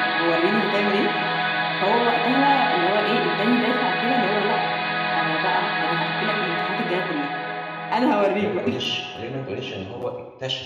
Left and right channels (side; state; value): both; identical; correlation 1.00